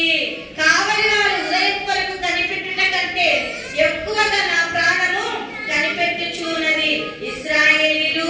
కావలి వారు ఉదయం కొరకు కనిపెట్టుట కంటే ఎక్కువగా నా ప్రాణము కనిపెట్టుచు ఉన్నది. ఇశ్రాయేలీయులు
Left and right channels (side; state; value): both; identical; correlation 1.00